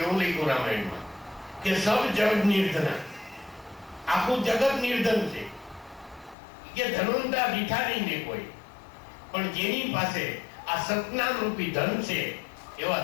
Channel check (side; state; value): right; drops out; at 6.4 s